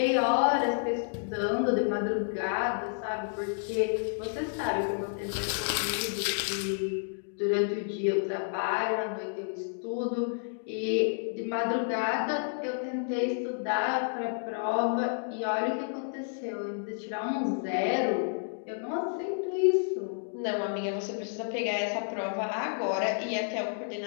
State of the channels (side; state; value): right; silent; digital silence